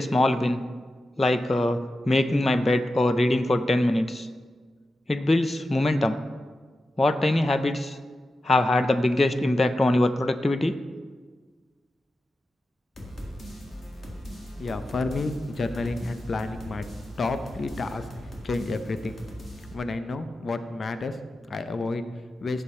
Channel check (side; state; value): both; normal; correlation 0.92